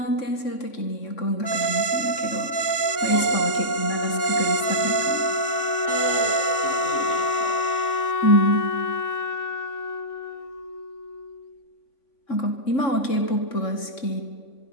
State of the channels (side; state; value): right; late; 3.5 ms